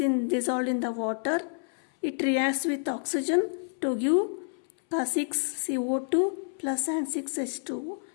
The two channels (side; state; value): right; silent; 59 dB below the other